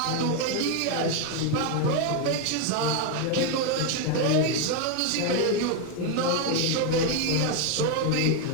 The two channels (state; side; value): different; both; correlation 0.01